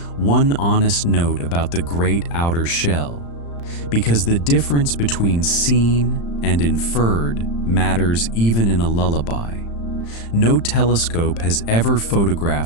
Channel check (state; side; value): late; right; 35 ms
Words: One honest note about the great outer shell, because the difference between seen and inferred matters even in a lullaby. No telescope has ever